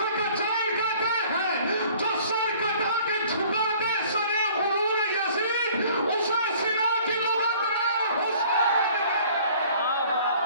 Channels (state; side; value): inverted; both; correlation -0.53